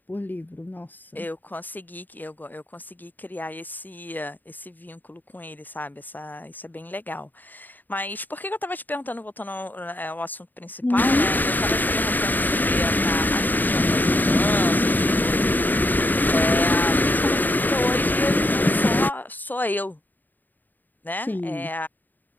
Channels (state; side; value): late; right; 0.088 ms